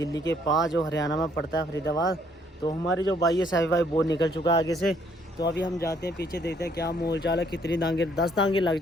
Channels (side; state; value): both; normal; correlation 0.66